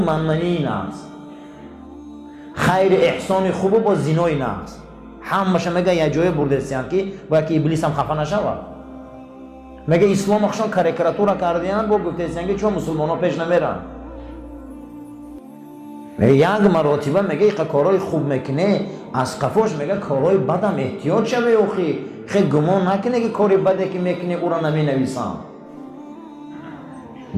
نقض، خیر احسان خوب و با زینای نقض. همش میگه یه جای بردستیان که باید که ابلیس هم خفه نشود. میگه اسلام اخشان کاریکاتور کردیان با گفتستیان که چون مسلمان ها پیش نمیرن. میگه یک مراتبه میگه ایقا کارهای خوب میکنه، از قفاش میگه کارهای بدم احتیاط شوه اوخی. خیلی گمان نکنه که کاری بده که میکنه او را نمی نویسم.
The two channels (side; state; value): both; identical; correlation 1.00